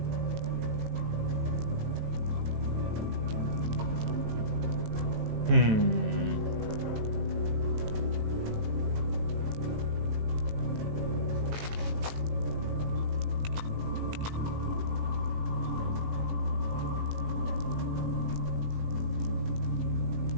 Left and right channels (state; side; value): late; left; 18 ms